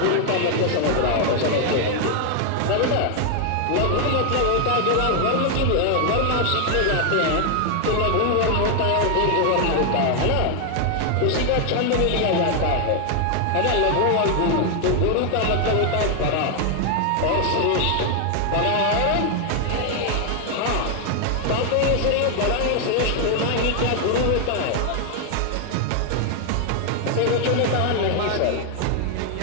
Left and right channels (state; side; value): different; both; correlation 0.00